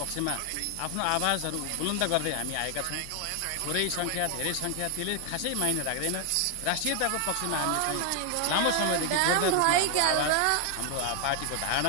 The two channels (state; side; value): different; both; correlation 0.00